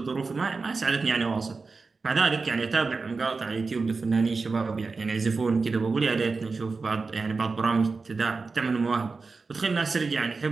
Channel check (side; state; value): left; quieter; 4.2 dB